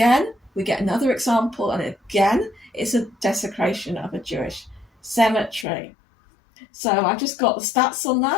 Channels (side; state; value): right; drops out; at 5.7 s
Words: we get another example, and again, it's a desecration of a Jewish cemetery. So I just got the stats on